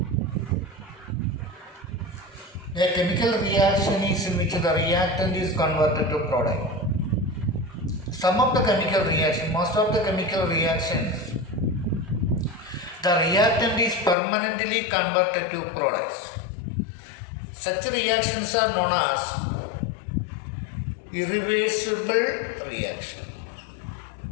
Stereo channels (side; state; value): right; drops out; at 14.2 s